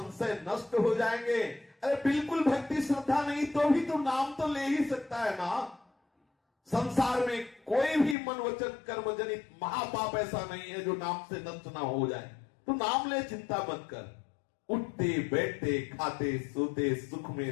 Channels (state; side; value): drops out; right; at 8.2 s